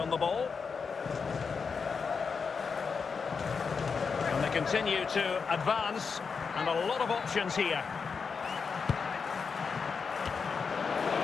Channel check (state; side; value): quieter; right; 5.5 dB